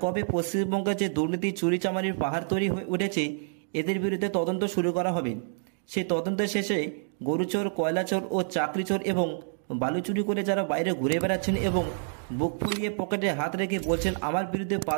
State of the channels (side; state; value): left; silent; digital silence